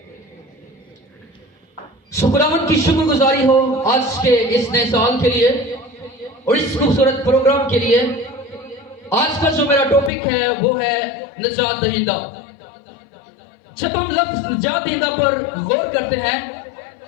خداوند کی شکر گزاری ہو آج کے اس نئے سال کے لیے اور اس خوبصورت پروگرام کے لیے. آج کا جو میرا ٹاپک ہے وہ ہے نجات دہندہ. جب ہم لفظ نجات دہندہ پر غور کرتے ہیں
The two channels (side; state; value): right; drops out; at 10.1 s